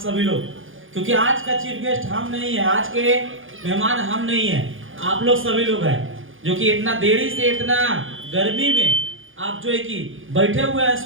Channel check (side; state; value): left; late; 0.58 ms